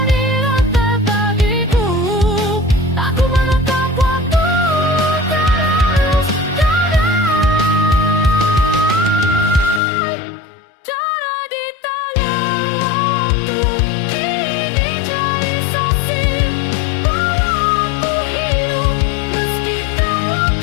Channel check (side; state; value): right; drops out; at 9.8 s